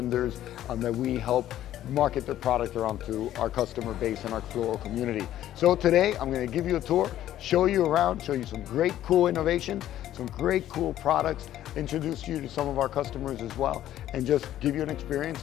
that we help market their product around to our customer base and our floral community. So today I'm going to give you a tour, show you around, show you some great cool innovations, some great cool products, introduce you to some of our customers as well, and just give you an experience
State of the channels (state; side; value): quieter; right; 12.5 dB